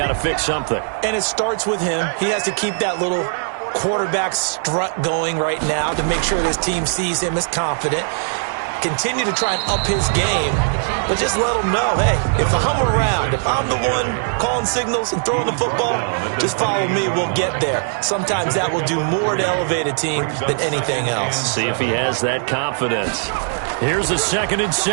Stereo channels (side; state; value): left; silent; digital silence